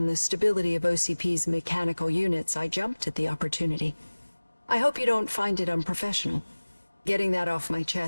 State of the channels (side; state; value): both; inverted; correlation -1.00